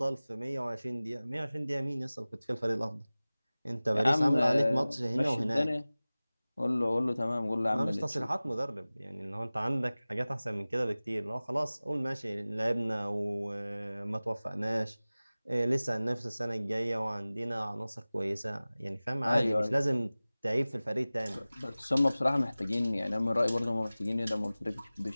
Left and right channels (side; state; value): both; inverted; correlation -0.98